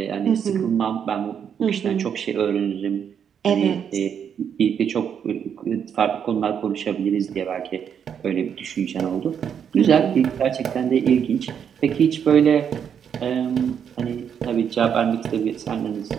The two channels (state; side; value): quieter; left; 8.0 dB